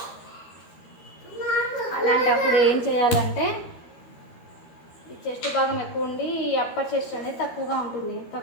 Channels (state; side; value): late; right; 13 ms